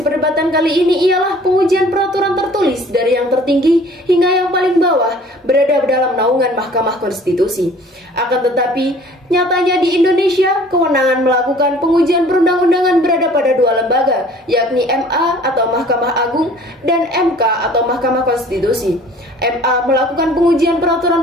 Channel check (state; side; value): normal; both; correlation 0.51